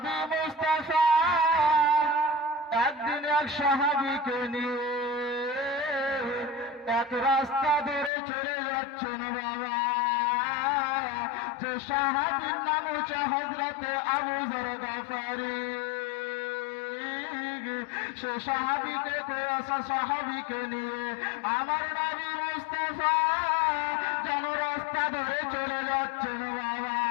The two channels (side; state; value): right; drops out; at 8.1 s